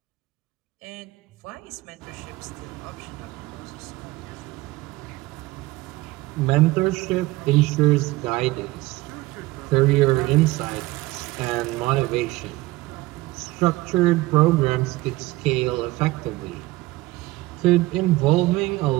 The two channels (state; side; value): quieter; left; 19.7 dB